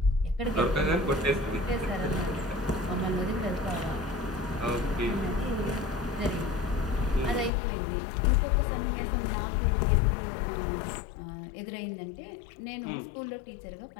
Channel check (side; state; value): right; drops out; at 7.5 s